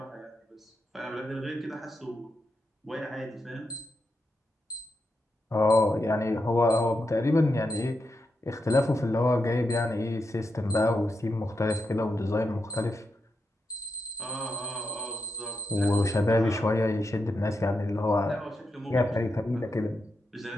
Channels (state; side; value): normal; both; correlation 0.86